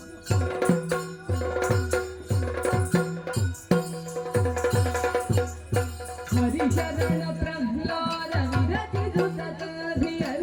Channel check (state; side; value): identical; both; correlation 1.00